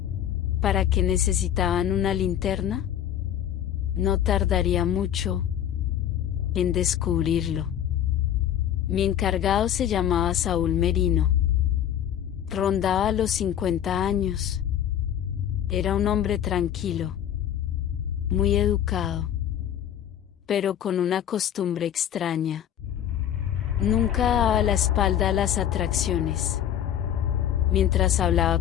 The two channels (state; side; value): quieter; right; 10.3 dB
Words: ¿Para qué necesitaban una linterna? No tardaría mucho en descubrirlo. Mi encargado se llamaba Saúl Merino. Rondaba los 50 años. Era un hombre tranquilo, muy educado, pero con una costumbre extraña. Nunca daba la espalda a las atracciones. Mientras